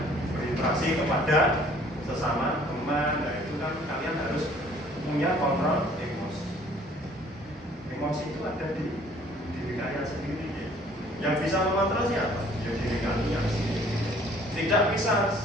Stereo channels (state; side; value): normal; both; correlation 0.56